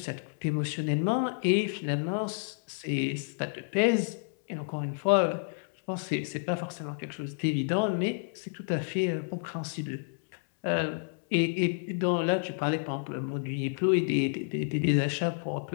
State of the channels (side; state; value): right; silent; 58 dB below the other